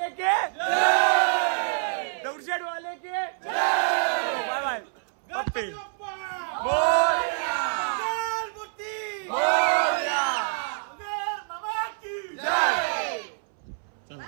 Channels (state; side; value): silent; left; 61 dB below the other